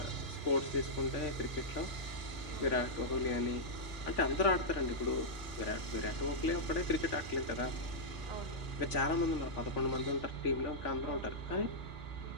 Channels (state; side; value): late; right; 3.5 ms